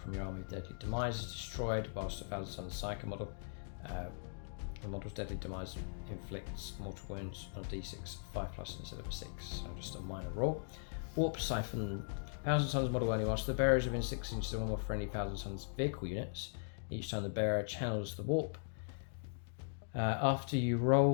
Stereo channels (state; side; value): silent; right; digital silence